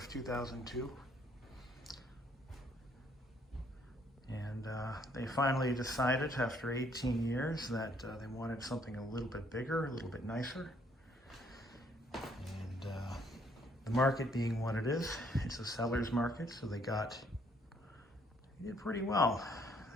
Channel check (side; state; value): both; normal; correlation 0.67